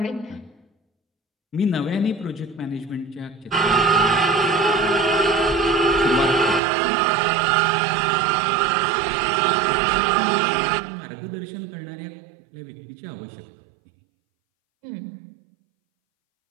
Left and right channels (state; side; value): drops out; left; at 6.6 s